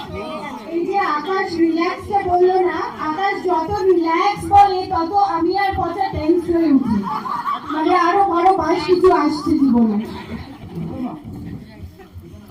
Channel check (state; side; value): identical; both; correlation 1.00